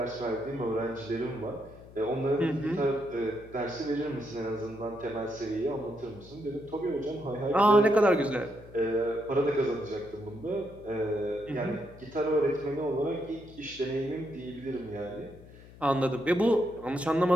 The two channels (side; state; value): left; noise; hum, 20 dB below the sound